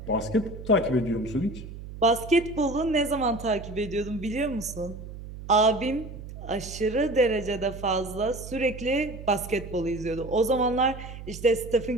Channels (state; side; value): noise; right; hum, 12 dB below the sound